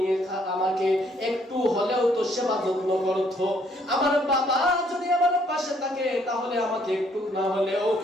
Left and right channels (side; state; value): both; normal; correlation 0.67